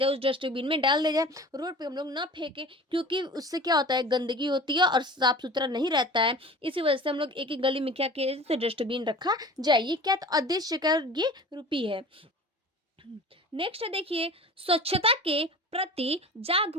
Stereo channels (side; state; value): both; normal; correlation 0.39